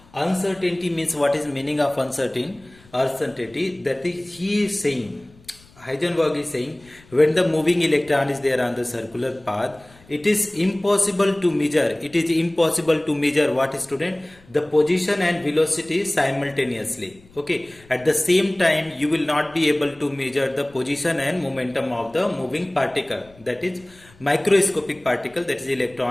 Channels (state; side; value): noise; left; rumble, 27 dB below the sound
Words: Uncertainty means, what is meaning of uncertainty? That is, he is saying, Heisenberg is saying, when the moving electron is there on the circular path, it is impossible to measure. It is impossible to measure what, student? The position and velocity simultaneously. Okay. At the same time, you will not be able to measure the position and momentum of the moving particle. That is microscopic particle, that is